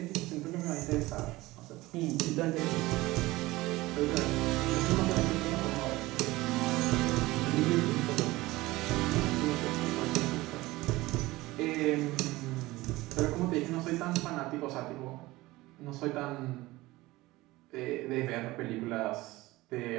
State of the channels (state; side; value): quieter; left; 19.4 dB